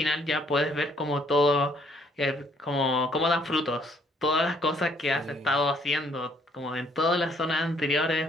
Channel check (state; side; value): normal; both; correlation 0.66